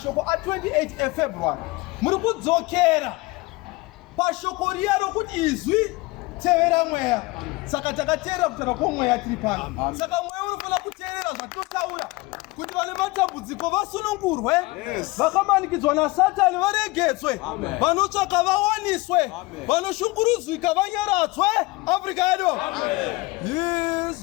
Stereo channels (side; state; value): right; quieter; 22.5 dB